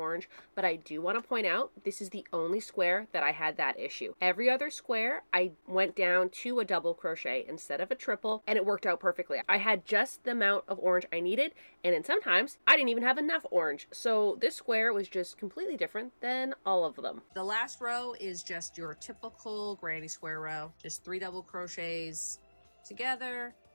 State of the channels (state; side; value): inverted; both; correlation -1.00